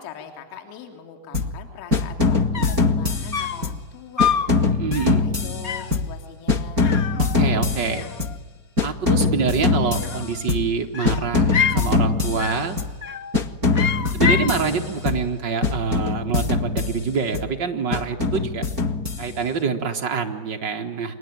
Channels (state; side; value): late; left; 4.4 ms